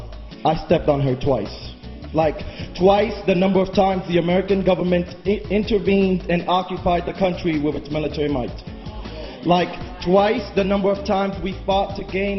I stepped on her twice. Like twice the number of times the American government intervened and occupied the country with its military might. Like twice the number of times we fought to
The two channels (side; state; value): both; identical; correlation 1.00